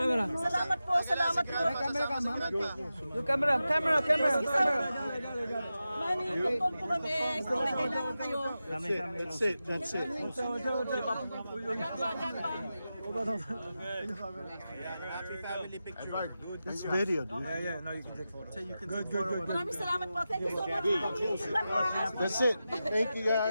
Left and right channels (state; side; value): inverted; both; correlation -0.92